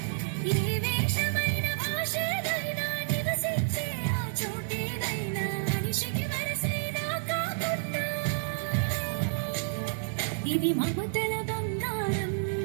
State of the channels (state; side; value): silent; left; digital silence